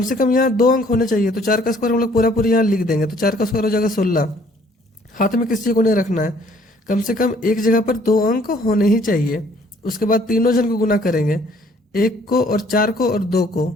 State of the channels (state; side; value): normal; both; correlation 0.60